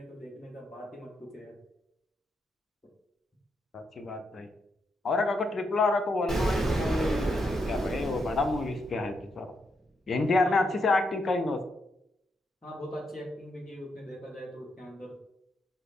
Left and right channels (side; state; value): both; normal; correlation 0.80